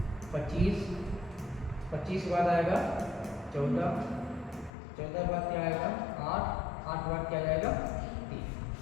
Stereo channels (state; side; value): drops out; right; at 4.7 s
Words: 25 के बाद आएगा 14 के बाद क्या आएगा 8 के बाद क्या जाएगा 3।